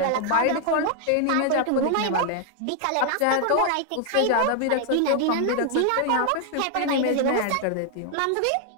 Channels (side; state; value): both; different; correlation 0.00